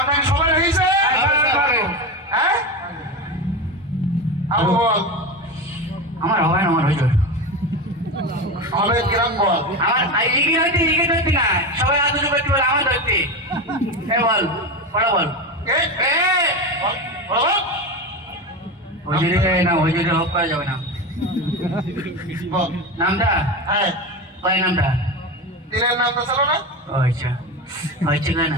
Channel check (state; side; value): normal; both; correlation 0.21